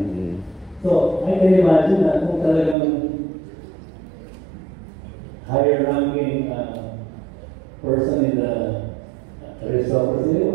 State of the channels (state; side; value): drops out; left; at 2.8 s